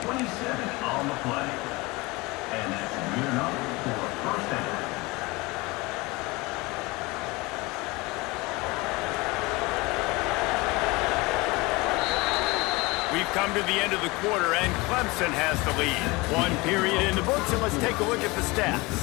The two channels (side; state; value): right; quieter; 23.7 dB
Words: 27 on the play. And that's good enough for a first down. We've come to the end of the quarter, and Clemson has the lead. One period in the books, and let's take a look at the